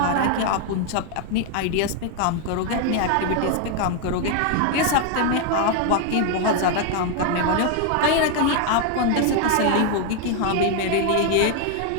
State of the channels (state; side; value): different; both; correlation 0.00